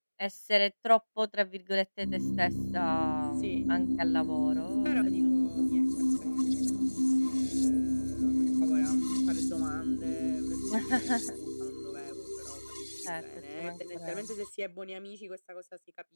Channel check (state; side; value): inverted; both; correlation -1.00